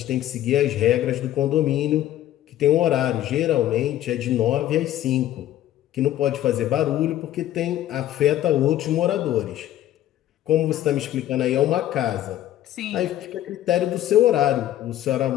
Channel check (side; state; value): right; quieter; 12.9 dB